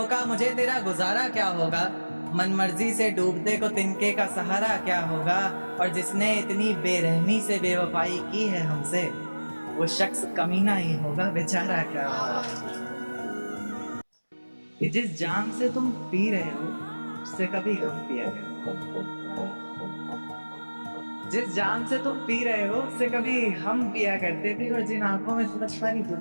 मुझे तेरा गुजारा क्या होगा, मन मर्जी से डूबते को तिनके का सहारा क्या होगा। और जिसने इतनी बेरहमी से बेवफाई की है हमसे, वो शख्स कमीना ही होगा, बेचारा क्या होगा। जिस जाम से तुम पी रहे हो उससे कभी हम पिया करें, जिस जाम से तुम पी रहे हो उससे कभी हम पिया करते थे। और जिन आंखों में तुम्हें सारी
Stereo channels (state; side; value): inverted; both; correlation -1.00